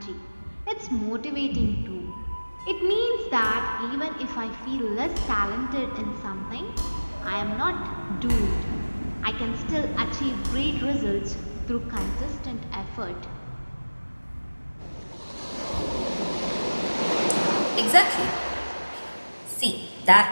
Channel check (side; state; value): both; inverted; correlation -1.00